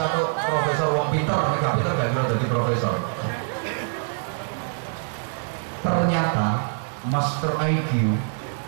Profesor Wong Pinter, gak pinter gak kira jadi profesor. Ternyata Master IQ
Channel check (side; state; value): left; silent; 57 dB below the other